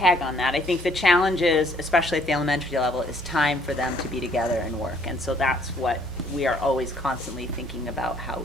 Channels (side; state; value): both; normal; correlation 0.63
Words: on that, I think the challenge is, especially at the elementary level, is time for them to be together and work. And so that's what we are always constantly thinking about, how